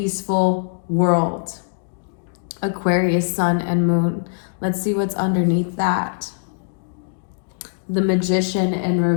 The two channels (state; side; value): silent; right; digital silence